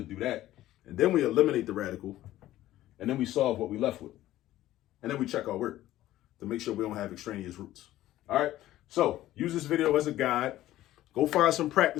do that. And then we eliminate the radical, and then we solve what we left with. And then we check our work to make sure we don't have extraneous roots. All right, so use this video as a guide. Go find some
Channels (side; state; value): right; quieter; 14.5 dB